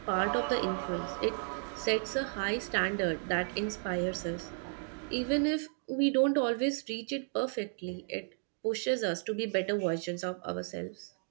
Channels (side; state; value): left; silent; 55 dB below the other